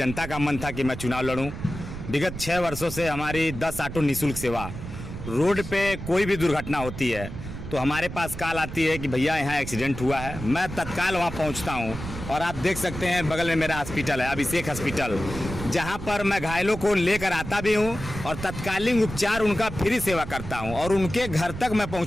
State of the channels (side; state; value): right; noise; rumble, 9 dB below the sound